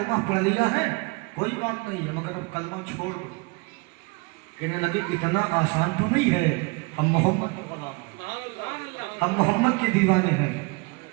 पढ़ लिया है कोई बात नहीं है, मगर अब कलमा छोड़ दो। कहने लगे, इतना आसान तो नहीं है, हम मोहम्मद का गुलाम हैं, हम मोहम्मद के दीवाने हैं,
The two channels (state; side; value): quieter; left; 27.9 dB